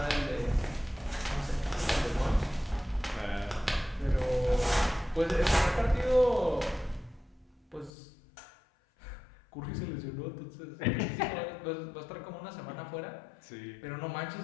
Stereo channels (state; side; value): drops out; right; at 7.9 s